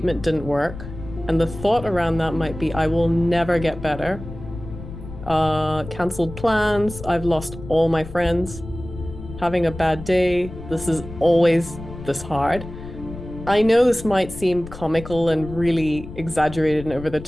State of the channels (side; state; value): left; noise; rumble, 12 dB below the sound